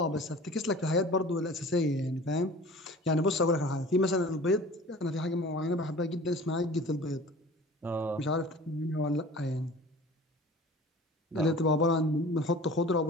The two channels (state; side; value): normal; both; correlation 0.42